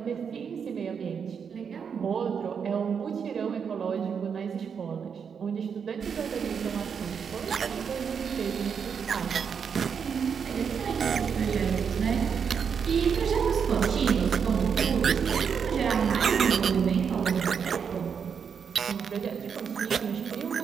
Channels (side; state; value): left; quieter; 6.8 dB